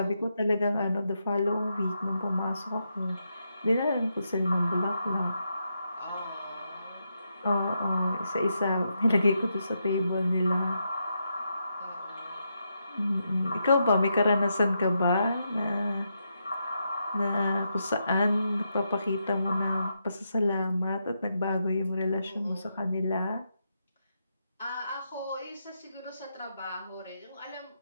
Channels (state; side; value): inverted; both; correlation -0.83